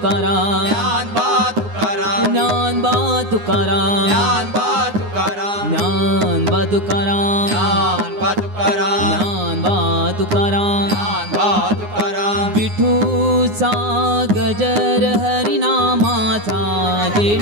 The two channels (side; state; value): left; late; 9.6 ms